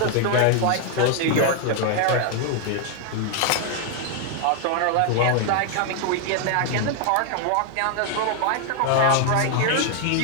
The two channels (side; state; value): both; different; correlation 0.00